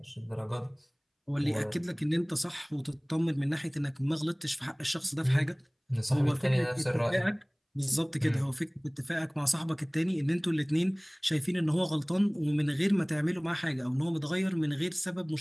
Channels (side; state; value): both; identical; correlation 1.00